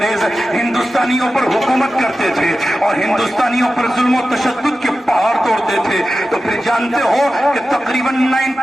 ہندوستانیوں پر حکومت کرتے تھے اور ہندوستانیوں پر ظلم و تشدد کے پہاڑ توڑتے تھے، تو پھر جانتے ہو کہ تقریباً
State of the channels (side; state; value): both; normal; correlation 0.93